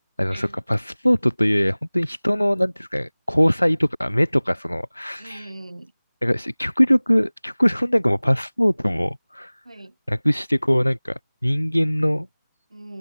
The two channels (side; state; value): both; inverted; correlation -1.00